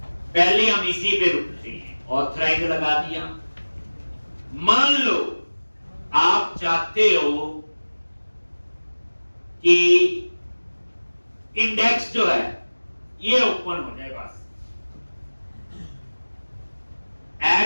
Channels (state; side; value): inverted; both; correlation -1.00